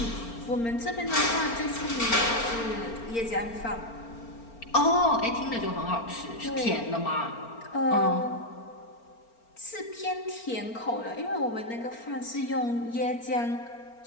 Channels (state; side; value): late; right; 4.4 ms